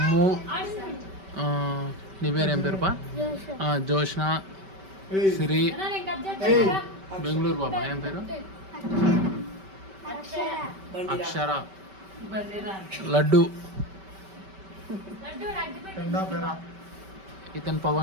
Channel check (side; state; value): left; late; 5.2 ms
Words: నీ పేరు ఏం పేరు పా జోష్న సిరి బెంగళూరు బాబా ఏం పేరు అక్షర లడ్డు ఇతను